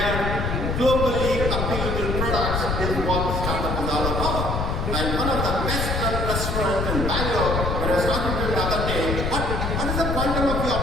are globally appealable products is what startup is all about. And one of the best run restaurants in Bangalore, when I was talking to him the other day, what is the quantum of your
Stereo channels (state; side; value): noise; left; rumble, 1 dB below the sound